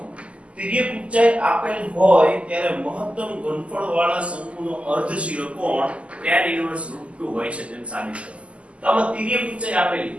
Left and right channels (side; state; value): left; late; 0.059 ms